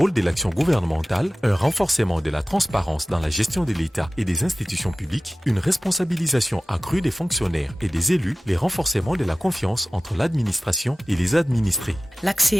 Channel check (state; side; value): normal; both; correlation 0.96